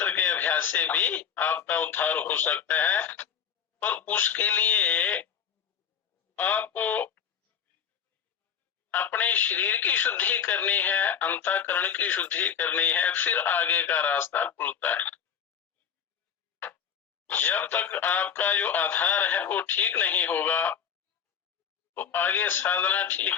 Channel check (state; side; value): quieter; right; 7.7 dB